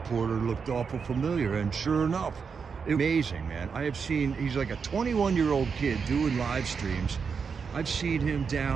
looked awful familiar, and sure enough, it was amazing, man. He's like a 21-year-old kid doing live streams. I've seen him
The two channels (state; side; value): quieter; left; 5.8 dB